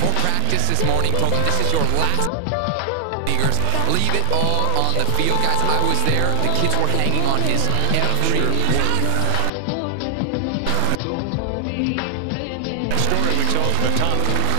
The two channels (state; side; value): different; both; correlation 0.00